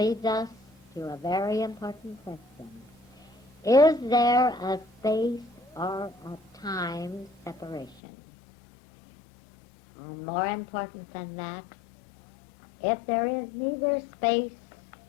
us to a very important question. Is there a space or a time separation? And more important than that, if there is neither space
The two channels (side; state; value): right; drops out; at 8.0 s